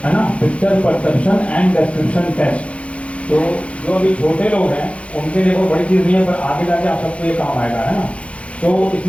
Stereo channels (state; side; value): late; right; 0.062 ms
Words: है ना, picture perception and description test. तो जो अभी छोटे लोग हैं उनके लिए कोई बड़ी चीज़ नहीं है, पर आगे जाके आप सबको ये काम आएगा, है ना। तो